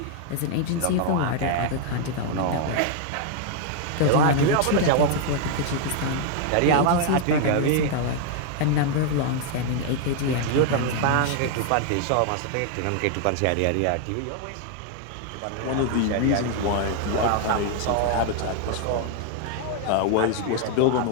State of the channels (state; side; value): different; both; correlation 0.00